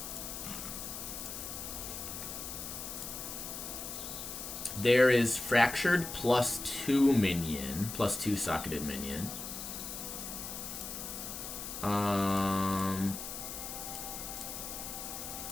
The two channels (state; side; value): noise; left; hiss, 7 dB below the sound